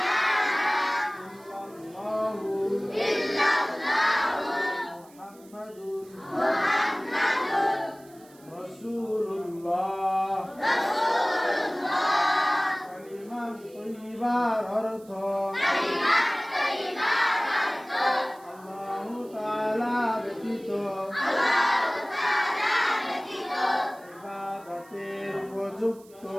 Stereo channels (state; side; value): noise; right; hiss, 26 dB below the sound